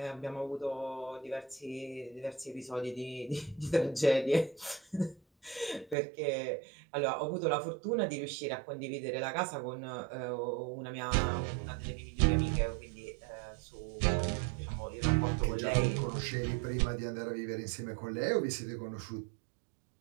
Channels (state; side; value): drops out; left; at 6.0 s